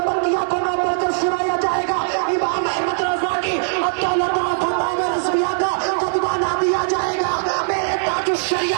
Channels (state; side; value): silent; left; digital silence